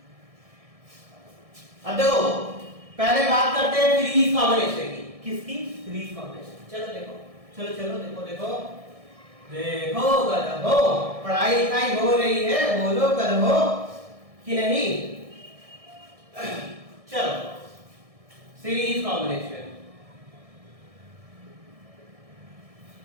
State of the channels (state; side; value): late; left; 1.6 ms